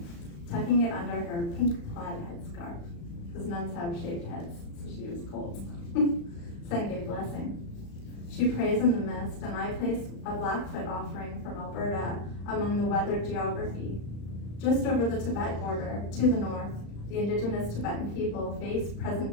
tucking it under her pink plaid headscarf, because nuns have shaved heads, so she was cold. Senge blessing. She prays in the mist, and I place a Blackfoot offering from Alberta among the weathered geography. Just over the Tibet border, to the north, The indigenous Tibetan people face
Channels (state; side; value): late; right; 35 ms